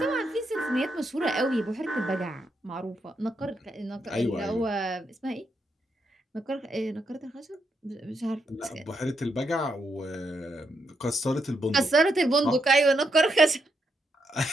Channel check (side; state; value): both; normal; correlation 0.80